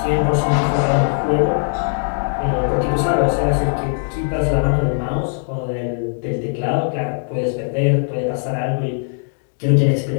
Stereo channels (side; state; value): right; silent; digital silence